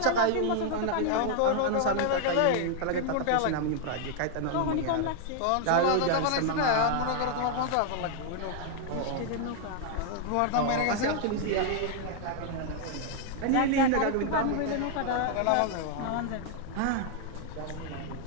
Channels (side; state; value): both; different; correlation 0.00